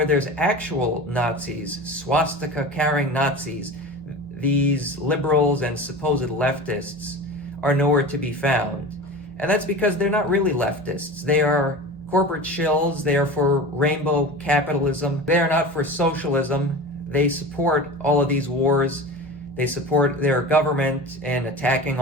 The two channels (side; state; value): both; normal; correlation 0.32